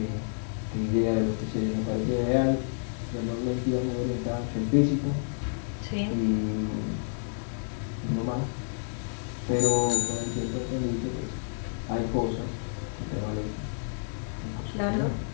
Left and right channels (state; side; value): silent; right; digital silence